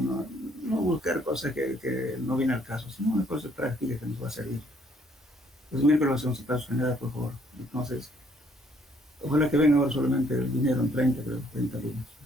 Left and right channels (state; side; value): normal; both; correlation 0.65